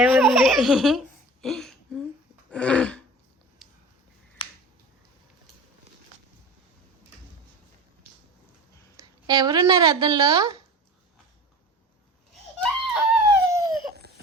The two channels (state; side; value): normal; both; correlation 0.36